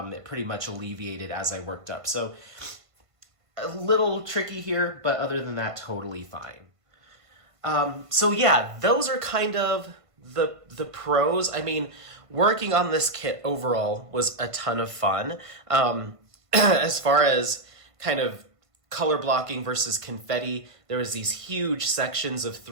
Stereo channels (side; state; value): left; late; 1.5 ms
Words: It pretty much alleviated as I worked up. So a little tricky here, but other than that, totally fine. So yeah, those are kind of the pros. I mean, working on this kit overall was a ton of fun. As far as kind of color blocking versus confetti, there was these huge sections of